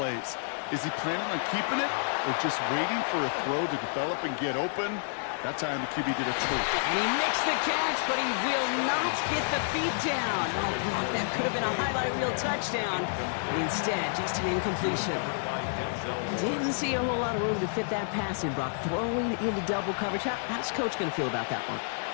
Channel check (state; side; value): silent; right; 58 dB below the other